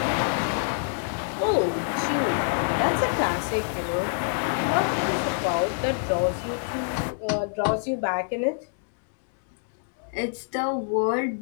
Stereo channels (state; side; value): silent; right; 61 dB below the other